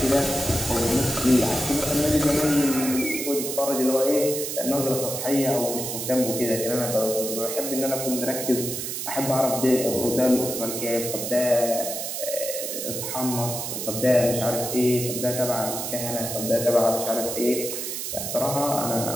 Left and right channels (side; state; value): right; noise; hiss, 4 dB below the sound